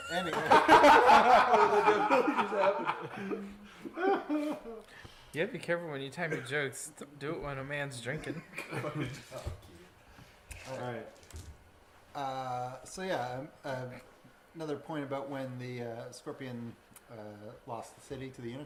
Anyway. You gotta be careful when you time your jokes. Do it when a man's drinking. Alright. So yeah, another point about when the Scorpion lost the city to the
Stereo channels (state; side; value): identical; both; correlation 1.00